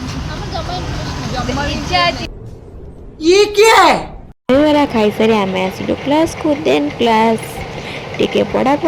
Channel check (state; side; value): identical; both; correlation 1.00